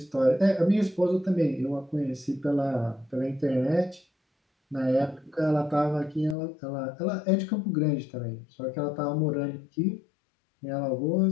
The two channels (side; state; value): right; drops out; at 6.4 s